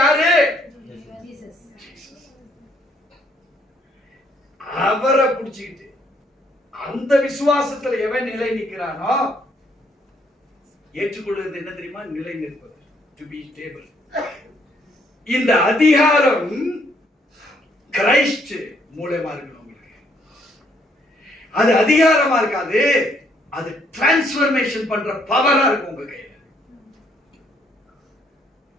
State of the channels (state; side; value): normal; both; correlation 0.69